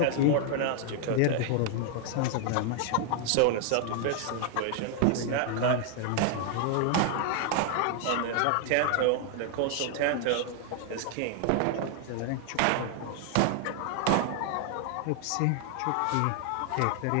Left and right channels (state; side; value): different; both; correlation 0.00